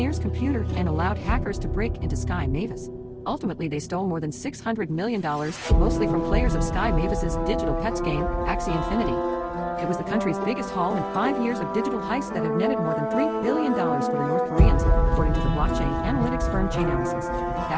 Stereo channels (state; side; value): identical; both; correlation 1.00